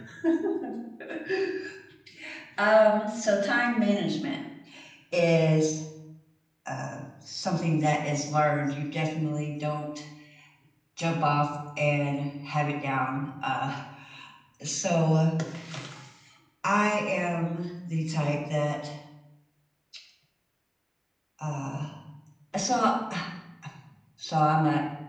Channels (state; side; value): identical; both; correlation 1.00